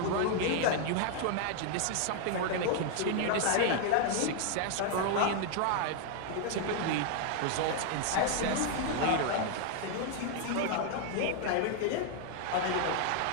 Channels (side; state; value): both; different; correlation 0.00